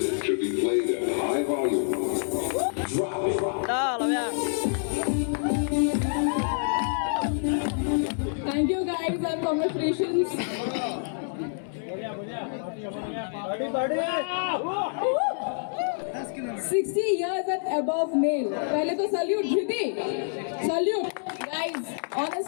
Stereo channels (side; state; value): right; silent; 60 dB below the other